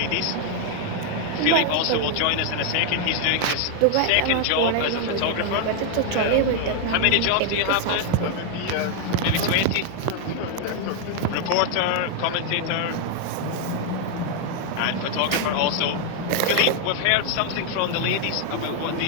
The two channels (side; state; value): both; different; correlation 0.00